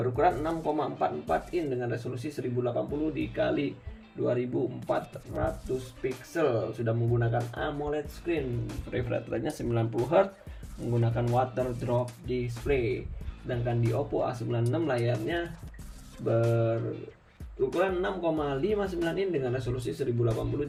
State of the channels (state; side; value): identical; both; correlation 1.00